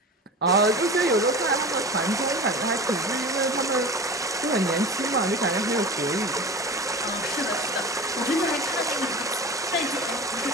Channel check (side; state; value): both; normal; correlation 0.33